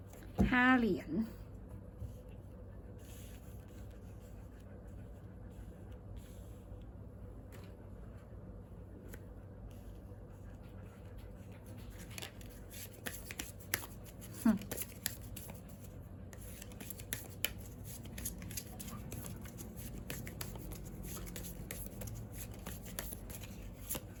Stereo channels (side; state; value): both; identical; correlation 1.00